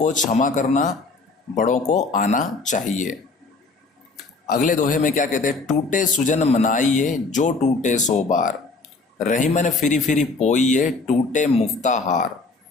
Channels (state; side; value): quieter; right; 3.8 dB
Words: क्षमा करना बड़ों को आना चाहिए। अगले दोहे में क्या कहते हैं, टूटे सुजन मनाइए जो टूटे सो बार, रहीमन फिरी फिरी पोइए टूटे मुफ्ता हार।